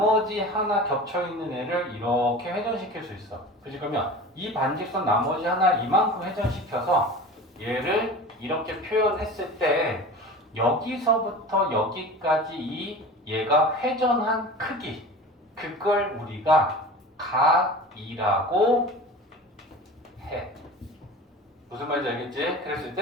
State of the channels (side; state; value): both; normal; correlation 0.35